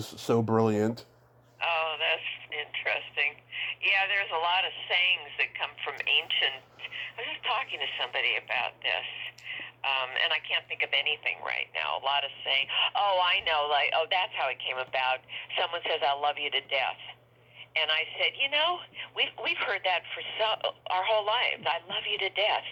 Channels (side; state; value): both; identical; correlation 1.00